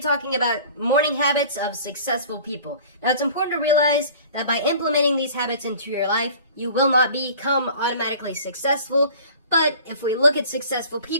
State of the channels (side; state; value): both; inverted; correlation -0.45